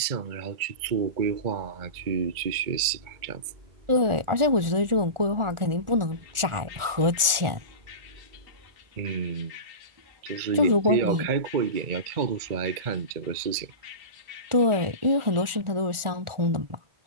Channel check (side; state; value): left; late; 1.4 ms